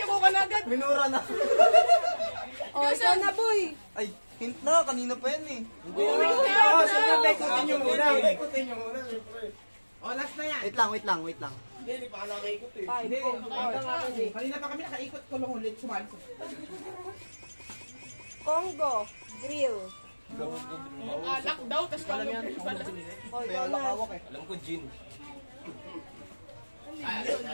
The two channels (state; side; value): inverted; both; correlation -1.00